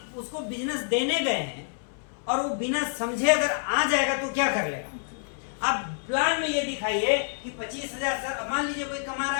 उसको बिजनेस देने गए हैं और वो बिना समझे अगर आ जाएगा तो क्या कर लेगा? आप प्लान में ये दिखाइए कि 25,000 सर, मान लीजिए कोई कमा रहा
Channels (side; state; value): right; silent; 60 dB below the other